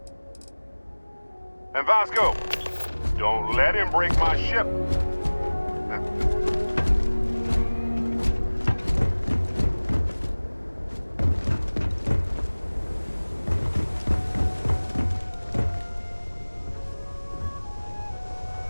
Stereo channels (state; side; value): inverted; both; correlation -1.00